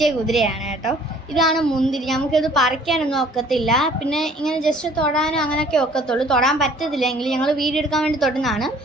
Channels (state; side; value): normal; both; correlation 0.55